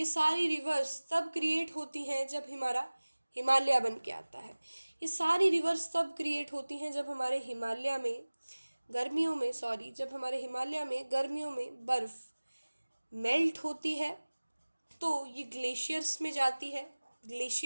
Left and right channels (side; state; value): both; inverted; correlation -1.00